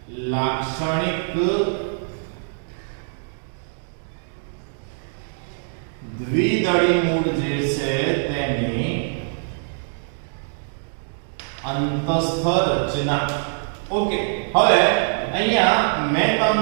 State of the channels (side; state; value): left; silent; digital silence